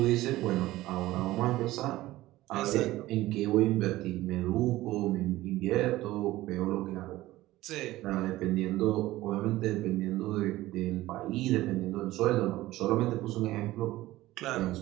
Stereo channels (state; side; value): quieter; left; 16.8 dB